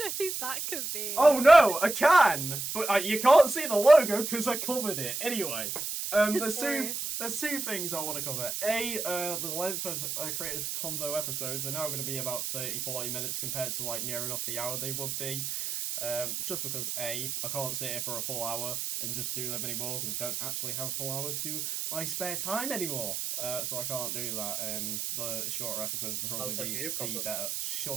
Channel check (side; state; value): right; noise; hiss, 3 dB below the sound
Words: who that could be. Oh no, a can. But you can't see the logo because I covered it. Anyway, there's two things I want to cover. The length of Creators Convo episodes are now going to be about 30-40 minutes compared to like near enough the hour they would be. Just because I can't sit here for a full hour and just do them anymore because I don't actually have a full hour to my spare time anymore. So I can't do that, and the shorter episodes will probably be better.